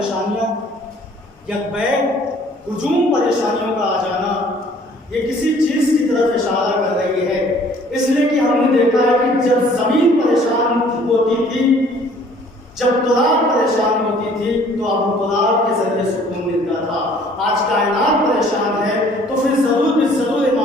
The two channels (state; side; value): normal; both; correlation 0.56